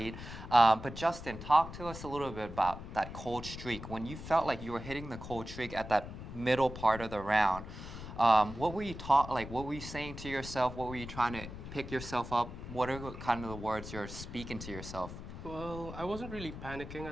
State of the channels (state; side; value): noise; left; rumble, 11 dB below the sound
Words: But Justin, talk to us a little bit about that cold streak. When you felt like you were hitting the cold streak at that middle part of the round, what were you what were you saying to yourself? What were you trying to pick yourself up? What are kind of the words you're speaking to yourself? Well, I wasn't really panicking